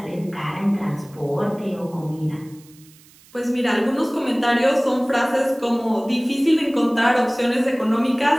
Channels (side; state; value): right; noise; hiss, 26 dB below the sound